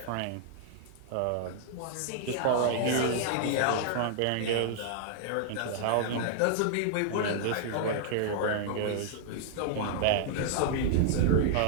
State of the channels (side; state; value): both; different; correlation -0.01